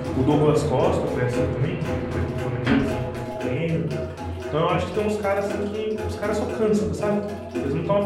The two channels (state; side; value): identical; both; correlation 1.00